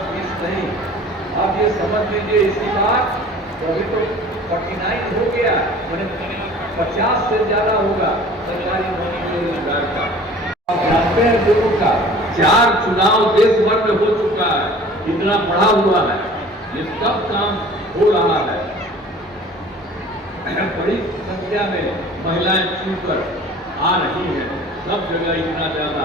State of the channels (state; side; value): normal; both; correlation 0.46